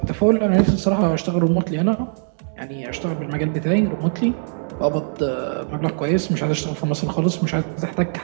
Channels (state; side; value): silent; left; digital silence